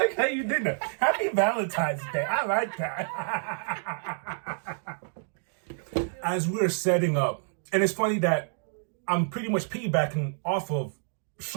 how you did that. Happy Valentine's Day. I like that. As we're setting up, and it's funny that I'm pretty much piggybacking off of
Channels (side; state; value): left; silent; digital silence